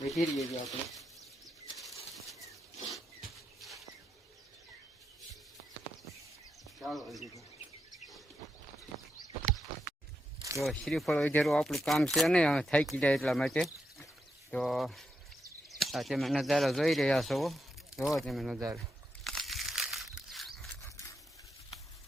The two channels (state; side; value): normal; both; correlation 0.84